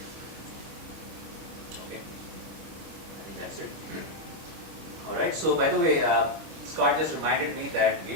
Okay, I think that's it. All right, so by the way, Scott just reminded me that we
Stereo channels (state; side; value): late; left; 25 ms